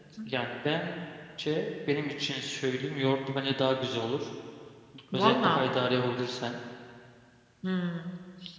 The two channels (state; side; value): identical; both; correlation 1.00